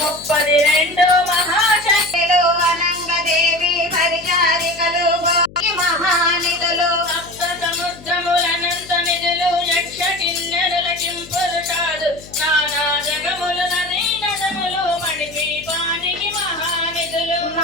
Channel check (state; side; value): noise; left; hum, 20 dB below the sound